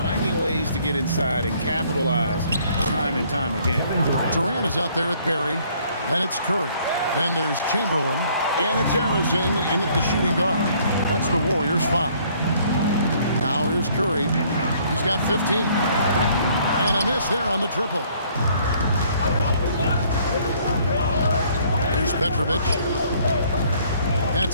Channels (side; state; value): both; inverted; correlation -0.61